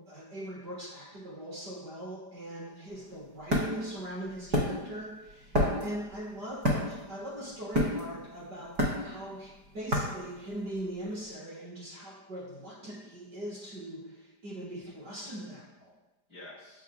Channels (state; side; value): late; left; 5.0 ms